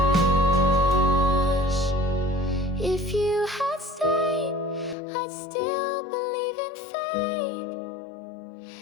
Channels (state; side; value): drops out; right; at 5.0 s